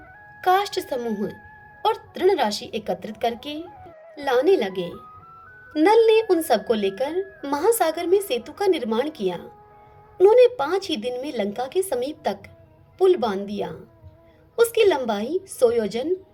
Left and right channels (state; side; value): identical; both; correlation 1.00